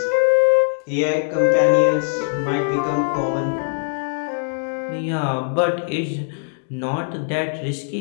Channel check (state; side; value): silent; right; digital silence